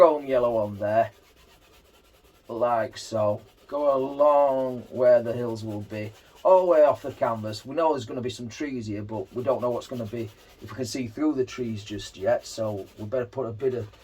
yellow on there, like so. Go along where the hills will be, all the way off the canvas. We know there's going to be some trees here, but we don't know what's going to be, if we can see through the trees just yet. So we better put a bit of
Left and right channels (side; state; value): both; identical; correlation 1.00